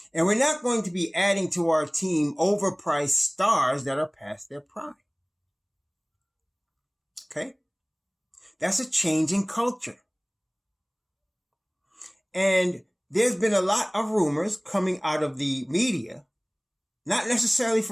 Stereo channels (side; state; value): both; identical; correlation 1.00